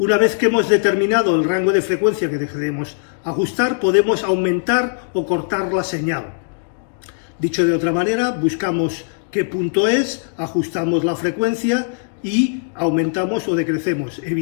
vez que hemos determinado el rango de frecuencia que queremos ajustar, podemos aumentar o cortar la señal. Dicho de otra manera, buscamos qué punto es, ajustamos la frecuencia y aumentamos o decrecemos.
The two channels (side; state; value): right; silent; digital silence